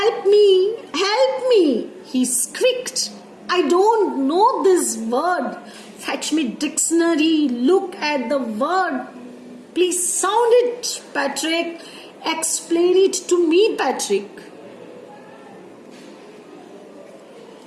me, he squeaked. I don't know this word. Fetch me dictionary, look at the word. Please sound it, Patrick. Explain it to me, Patrick.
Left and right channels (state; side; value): identical; both; correlation 1.00